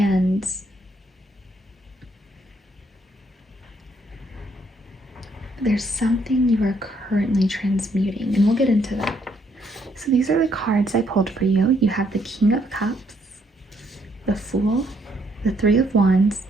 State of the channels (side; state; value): both; normal; correlation 0.71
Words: there's something you are currently transmuting, and we'll get into that. So these are the cards I pulled for you. You have the King of Cups, the Fool, the Three of Wands,